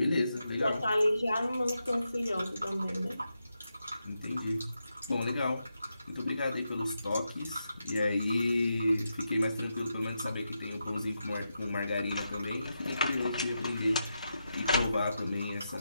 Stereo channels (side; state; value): both; inverted; correlation -0.86